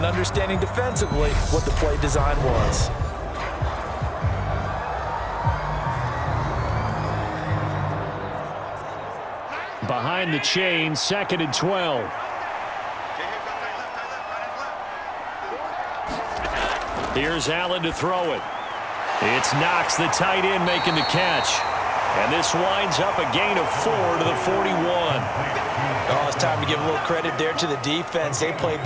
understanding defensively what the play design was. Behind the chain, 2nd and 12. Here's Allen to throw it. It's Knox, the tight end, making the catch. And this winds up a gain of 4 to the 41. Oh, it's time to give a little credit there to the defense. They played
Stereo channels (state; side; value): identical; both; correlation 1.00